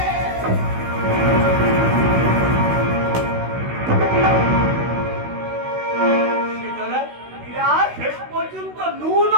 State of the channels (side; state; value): left; late; 16 ms